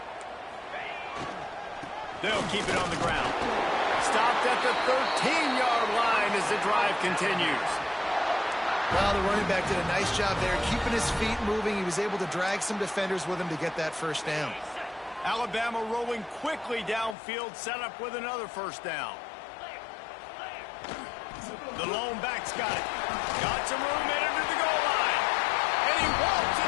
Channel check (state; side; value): drops out; right; at 17.2 s